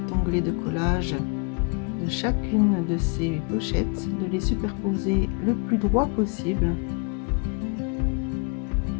onglet de collage de chacune de ces pochettes, de les superposer le plus droit possible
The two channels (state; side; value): quieter; right; 34.8 dB